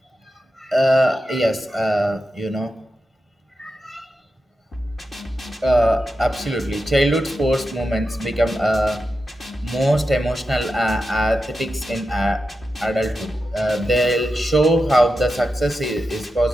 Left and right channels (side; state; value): both; normal; correlation 0.90